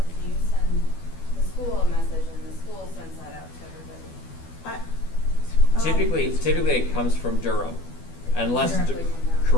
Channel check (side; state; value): right; late; 12 ms